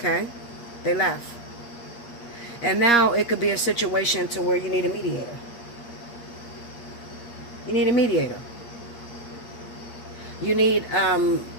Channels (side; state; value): right; late; 8.5 ms